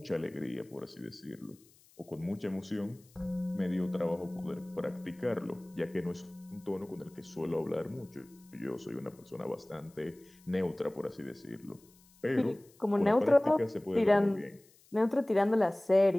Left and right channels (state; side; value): noise; left; hiss, 29 dB below the sound